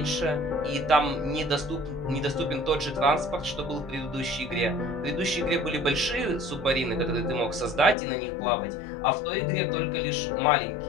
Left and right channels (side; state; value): right; drops out; at 8.0 s